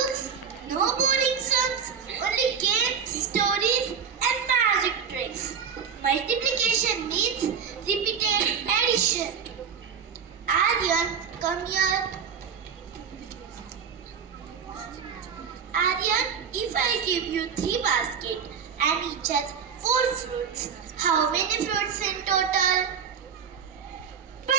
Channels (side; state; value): left; quieter; 6.9 dB